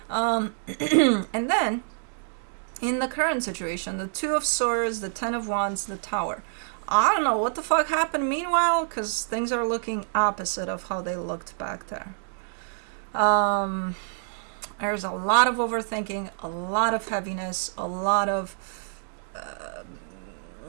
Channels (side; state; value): left; silent; digital silence